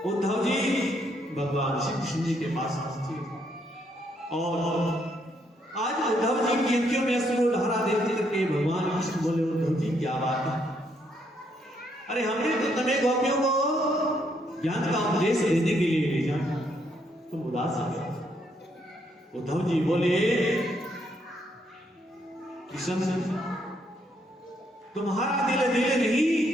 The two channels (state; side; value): normal; both; correlation 0.73